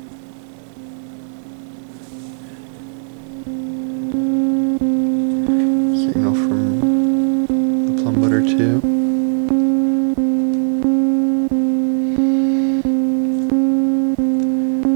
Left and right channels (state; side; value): silent; left; digital silence